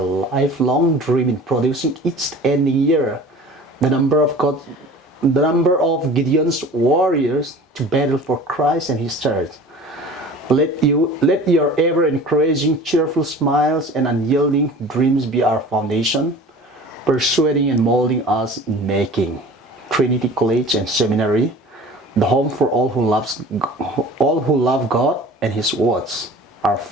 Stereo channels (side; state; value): both; normal; correlation 0.42